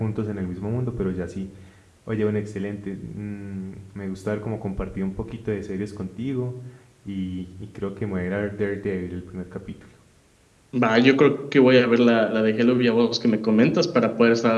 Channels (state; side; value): identical; both; correlation 1.00